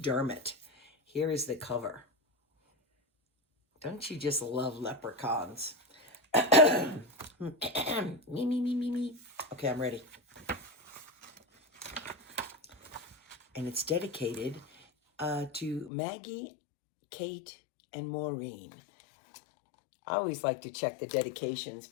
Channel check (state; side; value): drops out; right; at 15.9 s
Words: Here is the cover. Don't you just love leprechauns? Me. Okay, I'm ready. And it's dedicated to Maggie, Kate, and Maureen. I always like to check the dedications